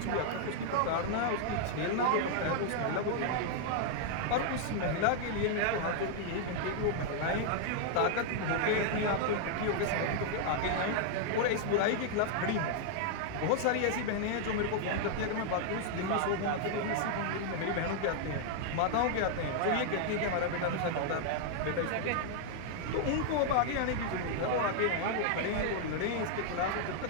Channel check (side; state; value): both; different; correlation 0.00